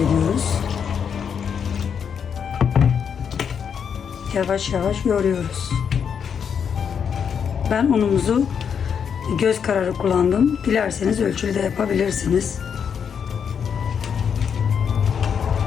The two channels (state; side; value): quieter; right; 7.2 dB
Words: Yavaş yavaş yoğuruyoruz. Ben unumuzu göz kararı kullandım. Dilerseniz ölçülü de yapabilirsiniz.